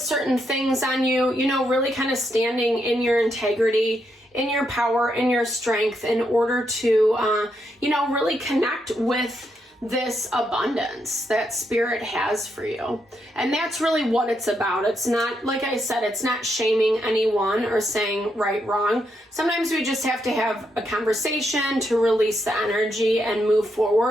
things on you, you know, really kind of standing in your integrity, in your power, in your strength in order to, you know, really connect with this abundance that Spirit has for you. And that's really what it's about. It's not, like I said, it's not shaming anyone or saying right, wrong. Sometimes we just have to have a conversation to release the energy and move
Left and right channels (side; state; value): both; normal; correlation 0.80